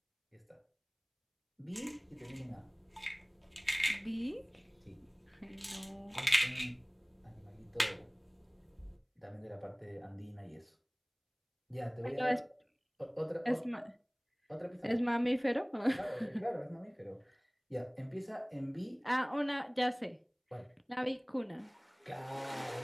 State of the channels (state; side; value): identical; both; correlation 1.00